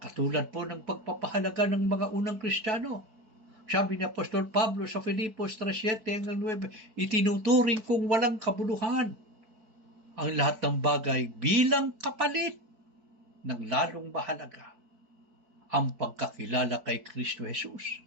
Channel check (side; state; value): left; late; 4.6 ms